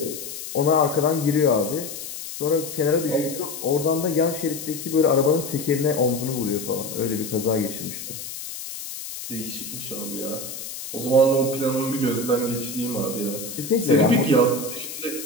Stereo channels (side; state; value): left; noise; hiss, 9 dB below the sound